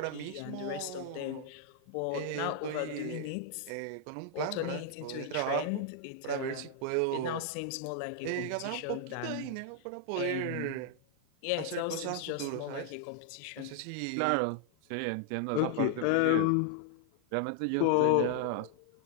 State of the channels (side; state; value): both; different; correlation 0.00